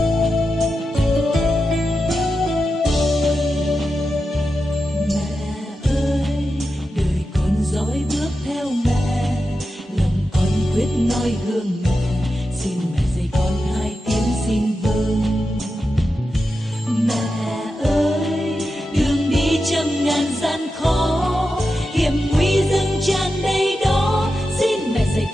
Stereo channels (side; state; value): both; normal; correlation 0.90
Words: Noi gương mẹ, xin mẹ dạy con hai tiếng xin vâng. Mẹ ơi, đường đi trăm ngàn gian khó, hiểm nguy dâng tràn đầy đó, xin mẹ dạy